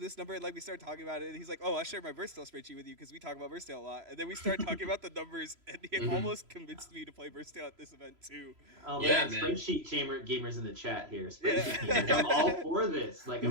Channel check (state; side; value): late; left; 3.0 ms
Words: number, and like we started talking about it, and he's like, oh, I'll share my Versatile spreadsheet with you because we talk about Versatile a lot. And then we started talking about the numbers, and he almost convinced me to play Versatile at this event too. Oh Yeah, man, man. Spreadsheet gamers in the chat here. Spreadsheet gamers, I'm all for this. Like I'm